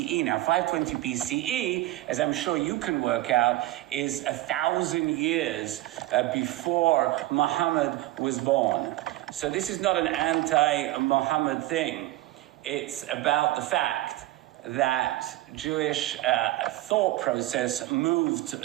Now, 520 BCE, as I'm sure you can work out, is 1,000 years before Muhammad was born. So this is not an anti-Muhammad thing. It's about the fact that Jewish thought process moved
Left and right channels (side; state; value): left; quieter; 16.6 dB